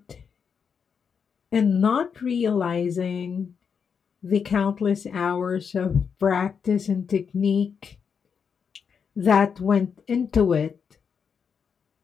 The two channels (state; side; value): quieter; right; 6.5 dB